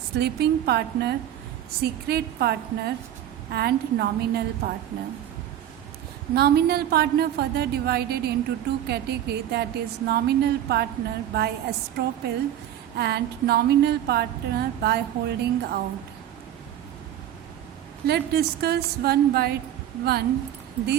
partner, secret partner and nominal partner. Nominal partner further divided into 2 categories, that is nominal partner by estoppel and nominal partner by holding out. Let's discuss one by one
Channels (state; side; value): quieter; left; 11.2 dB